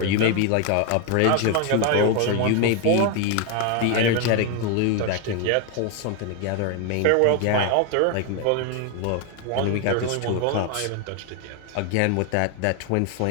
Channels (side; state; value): both; different; correlation 0.01